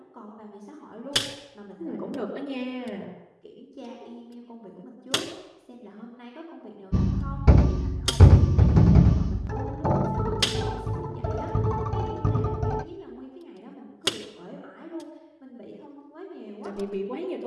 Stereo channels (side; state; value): both; identical; correlation 1.00